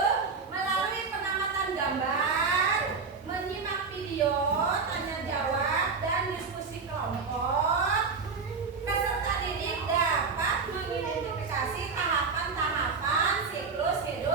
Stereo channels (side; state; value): left; quieter; 4.9 dB